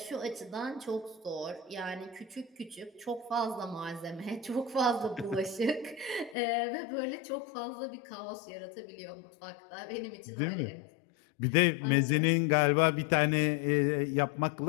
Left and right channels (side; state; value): right; drops out; at 6.4 s